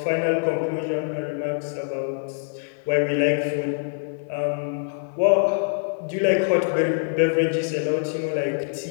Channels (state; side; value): silent; right; digital silence